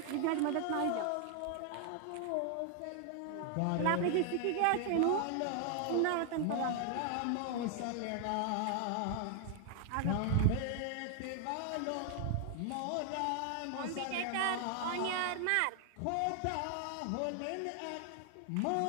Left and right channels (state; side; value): different; both; correlation 0.00